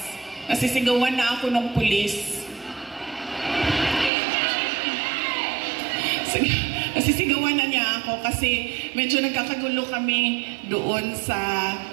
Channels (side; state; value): left; drops out; at 4.1 s